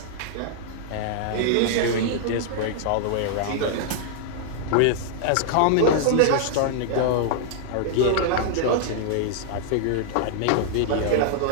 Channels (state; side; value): different; both; correlation -0.01